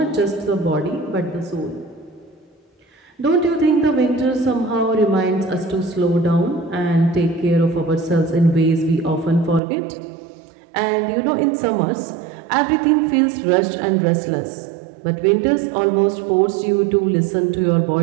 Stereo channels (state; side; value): drops out; left; at 9.6 s